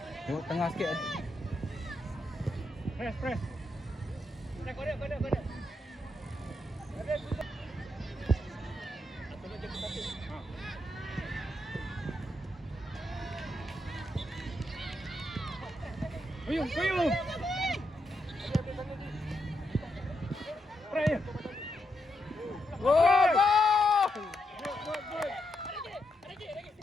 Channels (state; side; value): normal; both; correlation 0.82